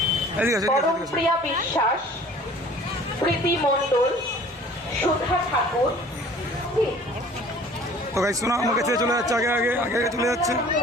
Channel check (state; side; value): normal; both; correlation 0.49